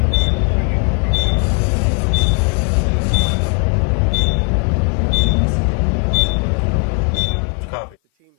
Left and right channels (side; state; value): right; quieter; 36.9 dB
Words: Things that the